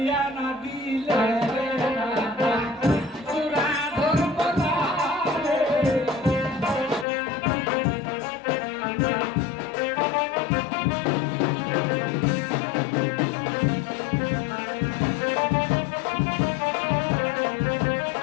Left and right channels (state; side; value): drops out; right; at 7.1 s